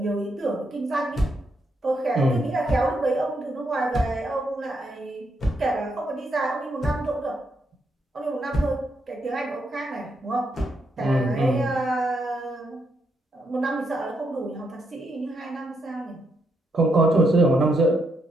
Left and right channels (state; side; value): normal; both; correlation 0.79